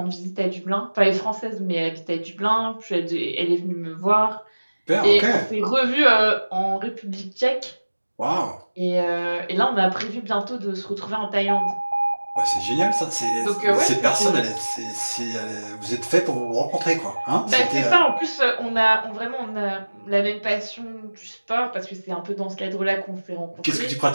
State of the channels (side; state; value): both; inverted; correlation -1.00